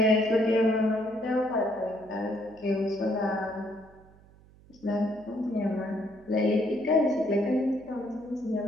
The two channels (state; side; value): noise; right; hum, 26 dB below the sound